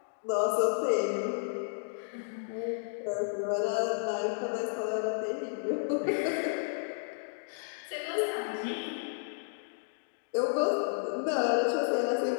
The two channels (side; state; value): right; silent; digital silence